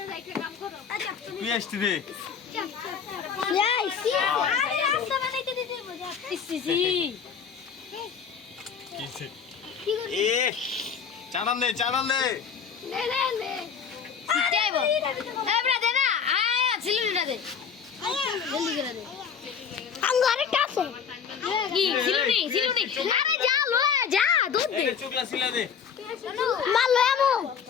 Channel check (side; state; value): right; quieter; 6.9 dB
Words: তুই আসতি রে এই সি আরে রাস্তা বানাইতে দিতে মজা ইসি কিছে এ চানান দে নে সিটাইবো এবড়া দে না আয়া সিলুটা দে জলদি করে দে আঙ্গারে কাছে কি সিলুনি আরে যা লো যা দুধ দে এই চুকলা সিলা দে মাল লো আমু